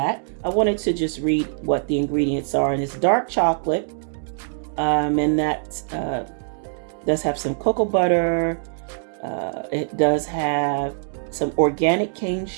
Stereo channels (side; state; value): left; silent; digital silence